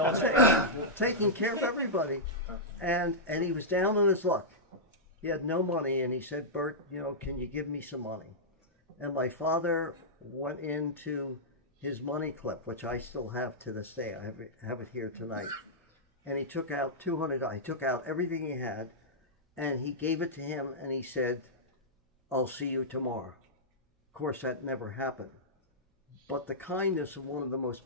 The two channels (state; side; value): normal; both; correlation -0.11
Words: Taking care of everybody. And he was down on his luck. He had no money, and he said, "Bert, can you give me some money?" And my father went into his money clip, which I still have to this day. I have it here tonight. And he took out $200. He took out everything he had, and he gave it to him, and he said, "I'll see you tomorrow." Of course, that never happened. But the kindness of one of the most